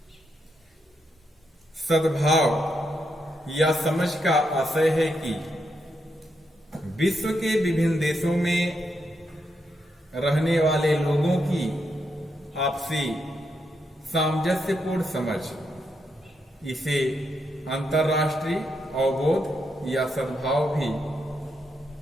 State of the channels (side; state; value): both; normal; correlation 0.81